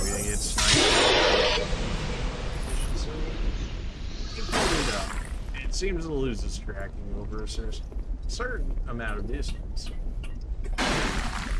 gonna get sniped. It seems to lose its tracking over a certain amount of distance.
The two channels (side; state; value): both; identical; correlation 1.00